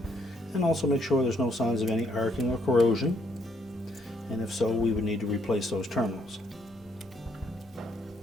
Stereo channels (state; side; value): normal; both; correlation 0.70